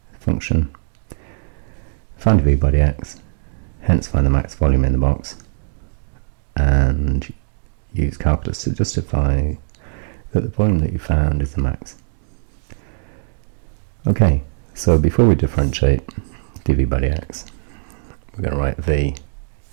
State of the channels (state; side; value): silent; left; digital silence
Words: function. Find V by dx, hence find the max volume in the box, and use calculus to justify that the volume that you found is the max. Okay, so before we differentiate dV by dx, we're going to write V.